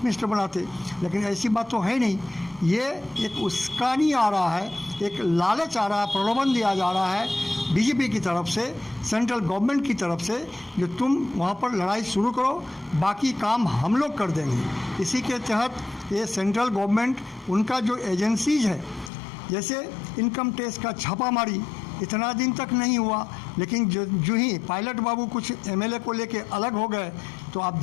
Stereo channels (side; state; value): right; drops out; at 19.1 s